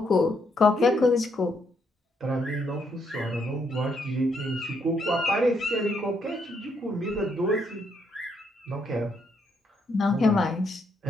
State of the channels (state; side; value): normal; both; correlation 0.75